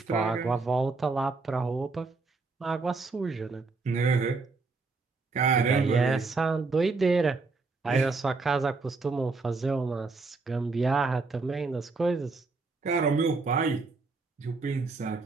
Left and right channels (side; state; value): left; quieter; 4.0 dB